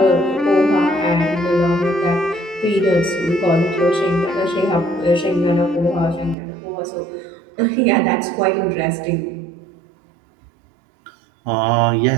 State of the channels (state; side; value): drops out; left; at 6.4 s